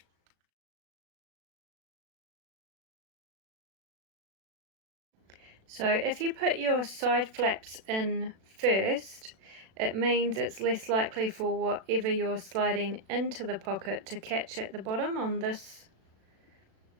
So if you put your side flaps in first, it means it's less likely for whatever you're sliding into the pocket to catch at the bottom on this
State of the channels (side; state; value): left; late; 36 ms